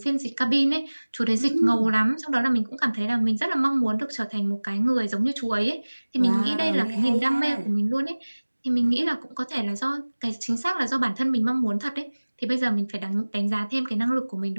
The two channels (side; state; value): both; inverted; correlation -1.00